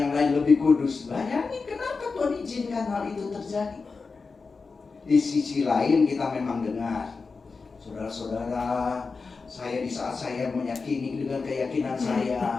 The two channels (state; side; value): quieter; right; 4.5 dB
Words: lain lebih kudus. Bayangin kenapa Tuhan izinkan hal itu terjadi. Di sisi lain kita memang dengar, saudara-saudara, saya di saat saya meyakini dengan keyakinan